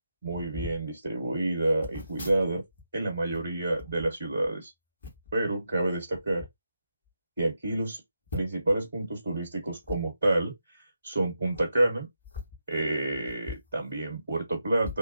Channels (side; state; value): both; inverted; correlation -0.85